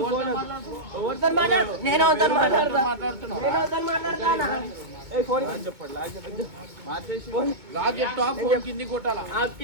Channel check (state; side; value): late; left; 2.2 ms